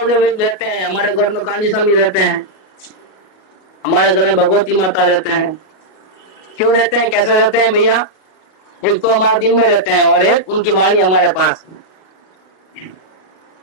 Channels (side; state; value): right; late; 38 ms